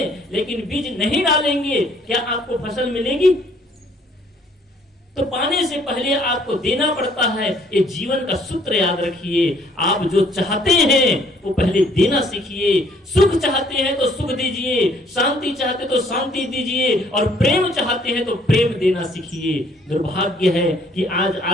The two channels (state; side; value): normal; both; correlation 0.62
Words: लेकिन बीज नहीं डालेंगे, क्या आपको फसल मिलेगी? तो पाने से पहले आपको देना पड़ता है। ये जीवन का सूत्र याद रखिए। आप जो चाहते हैं वो पहले देना सीखिए। सुख चाहते हैं तो सुख दीजिए, शांति चाहते तो शांति दीजिए, और प्रेम चाहते हैं तो प्रेम देना सीखिए। दुर्भाग्य है कि आज